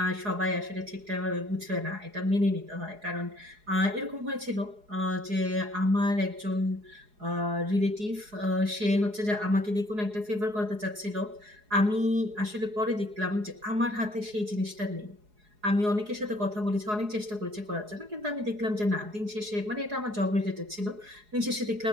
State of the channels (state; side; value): late; left; 4.8 ms